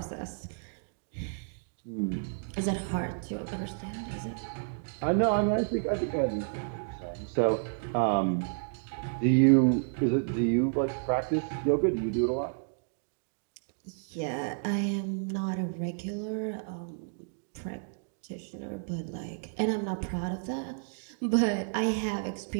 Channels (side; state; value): left; silent; digital silence